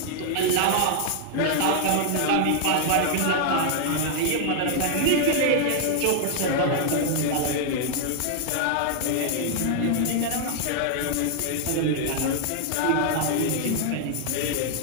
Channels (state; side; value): different; both; correlation 0.00